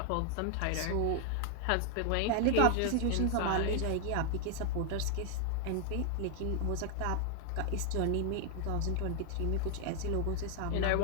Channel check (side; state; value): both; different; correlation 0.00